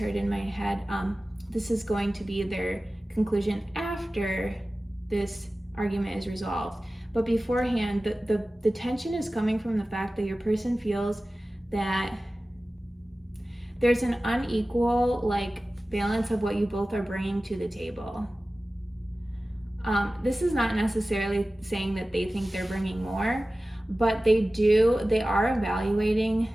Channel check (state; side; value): normal; both; correlation 0.96